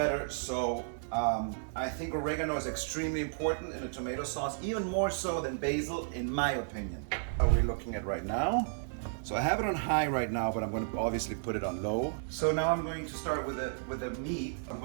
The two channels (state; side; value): silent; left; digital silence